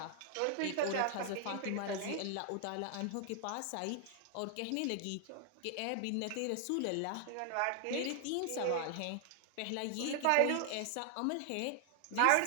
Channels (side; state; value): both; different; correlation 0.00